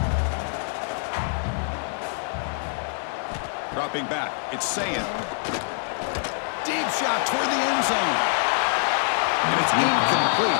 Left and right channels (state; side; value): silent; right; digital silence